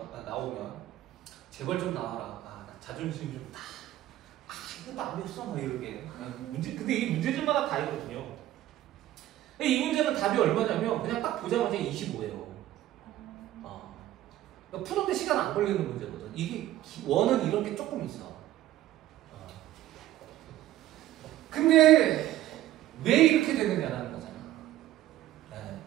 나오면. 제발 좀 나와라. 나 자존심 좀 다. 이것도 안 됐어. 막 이렇게. 근데 이 문제집마다 다 있거든요. 이 문제는 답이 얼마냐면 그냥 딱 보자마자 25예요. 푸는데 시간 안 걸리는 문제거든. 이게 원은 이런 게 조금 있어. 근데 왜 이렇게 되느냐라는 거잖아. 네.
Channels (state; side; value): quieter; left; 14.1 dB